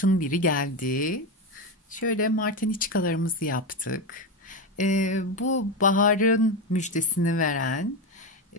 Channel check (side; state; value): both; normal; correlation 0.14